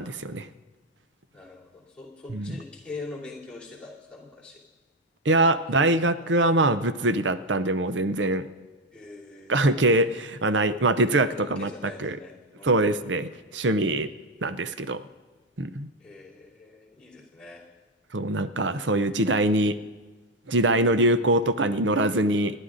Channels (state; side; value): normal; both; correlation 0.07